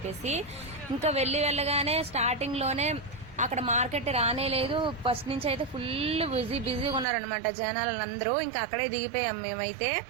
ఇంకా వెళ్ళగానే స్టార్టింగ్ లోనే అక్కడ మార్కెట్ రానే లేదు. ఫస్ట్ నుంచి అయితే ఫుల్ బిజీగా ఉన్నారనమాట జనాలందరూ. ఇంకా అక్కడే దిగిపోయాం మేమైతే.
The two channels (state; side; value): drops out; left; at 7.1 s